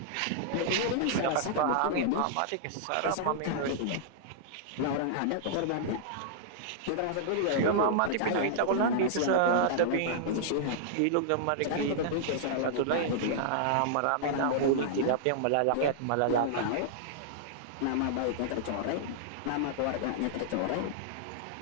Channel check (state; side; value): different; both; correlation -0.01